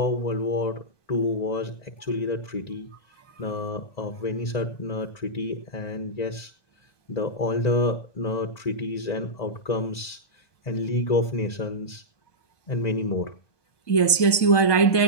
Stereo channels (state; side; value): late; right; 1.2 ms